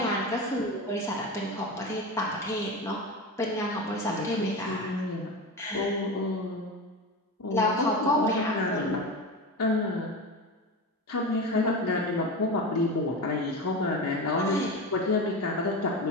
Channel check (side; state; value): both; normal; correlation 0.24